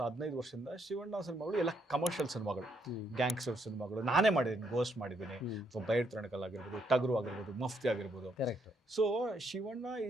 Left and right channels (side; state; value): both; normal; correlation 0.74